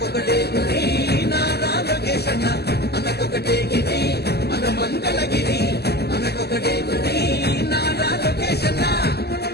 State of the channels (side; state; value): right; late; 0.47 ms